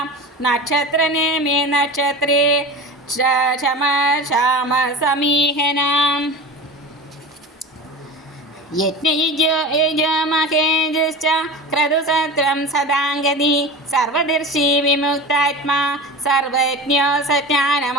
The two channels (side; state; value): both; normal; correlation 0.31